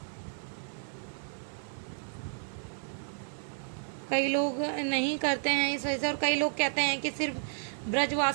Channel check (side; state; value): left; silent; 56 dB below the other